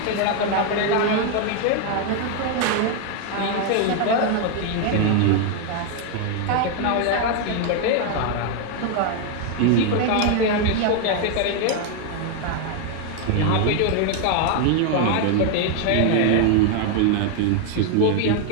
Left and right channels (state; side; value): different; both; correlation 0.01